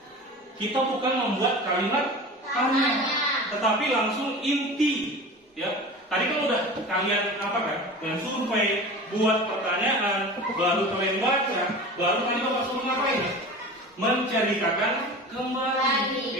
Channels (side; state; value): both; normal; correlation 0.34